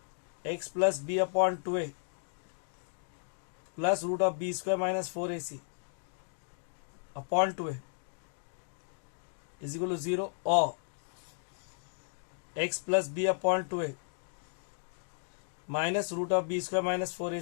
x plus B upon 2a plus root of B square minus 4ac upon 2a is equal to 0 और x plus B upon 2a minus root of B square minus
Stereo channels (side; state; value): right; silent; digital silence